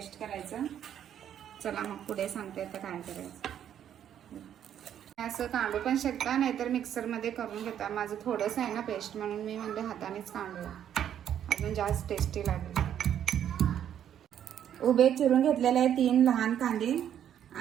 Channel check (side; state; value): left; quieter; 9.9 dB